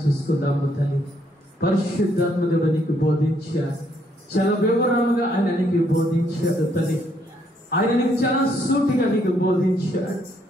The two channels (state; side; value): normal; both; correlation 0.71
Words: చేసుకుందాము. తల్లి పరిశుద్ధాత్మ దేవుడు నీకు బోధించాడు, చాలా వివరంగా ఆయన నీకు బోధించాడు. తల్లి ఆయన నీకు చాలా సూటిగా నీకు బోధించాడు.